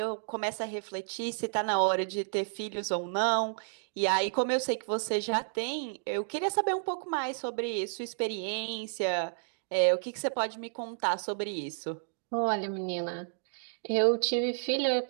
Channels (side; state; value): left; silent; digital silence